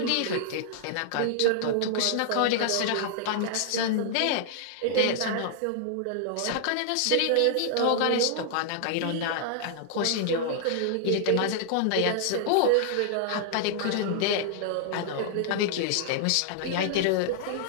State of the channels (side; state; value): both; different; correlation -0.01